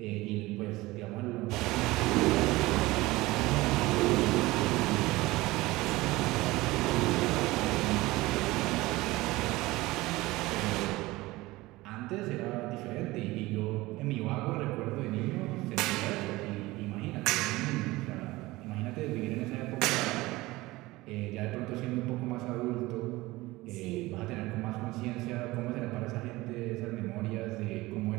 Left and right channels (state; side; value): quieter; left; 19.8 dB